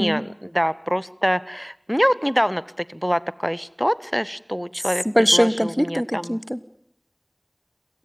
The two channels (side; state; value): both; identical; correlation 1.00